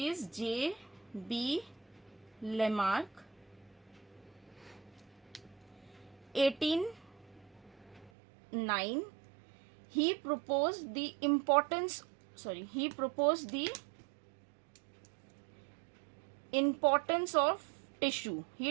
is J.B. Lamarck, 1809. He proposed the importance of tissue.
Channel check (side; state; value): left; drops out; at 8.1 s